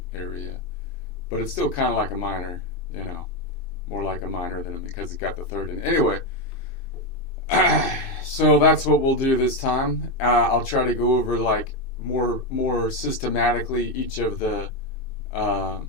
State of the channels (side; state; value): right; late; 2.6 ms